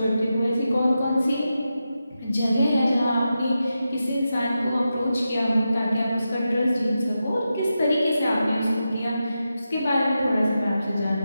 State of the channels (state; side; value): inverted; both; correlation -0.89